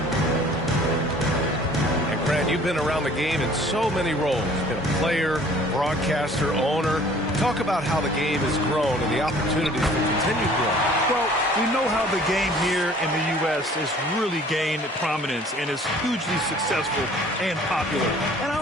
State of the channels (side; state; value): both; normal; correlation 0.52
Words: And Grant, you've been around the game in so many roles. Been a player, broadcaster, owner. Talk about how the game has grown and the opportunities for continued growth. Well, we know how the game here in the U.S. has really gained prominence and is hugely successful and popular. And I